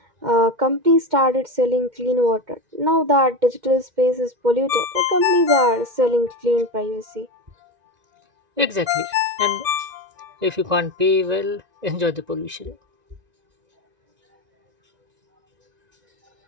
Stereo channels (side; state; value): left; late; 1.9 ms